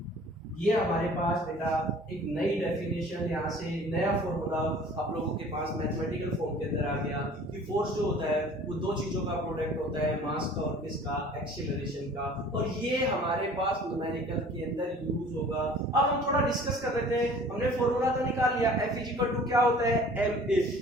ये हमारे पास बेटा एक नई डेफिनेशन, यहाँ से नया फॉर्मूला आप लोगों के पास मैथमेटिकल फॉर्म के अंदर आ गया कि फोर्स जो होता है वो दो चीजों का प्रोडक्ट होता है, मास का और किसका, एक्सीलरेशन का, और ये हमारे पास न्यूमेरिकल के अंदर यूज होगा। अब हम थोड़ा डिस्कस कर लेते हैं। हमने फॉर्मूला तो निकाल लिया, F इक्वल टू क्या होता है, ma।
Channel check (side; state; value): both; normal; correlation 0.48